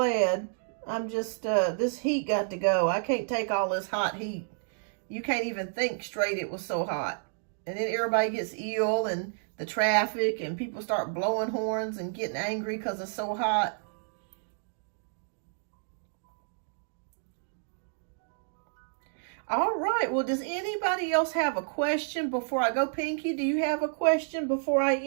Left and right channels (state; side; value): silent; left; digital silence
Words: I'm just, this heat got to go. I can't take all this hot heat. You can't even think straight, it was so hot. And then everybody gets ill, and the traffic, and people start blowing horns and getting angry because it's so hot. All right, well, does anybody else have a question before I go? Pinky, do you have a question before I